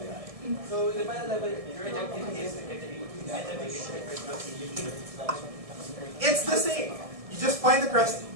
So the final level, your objective is to get the demon. It's the same. You just find the crest,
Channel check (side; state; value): left; late; 1.7 ms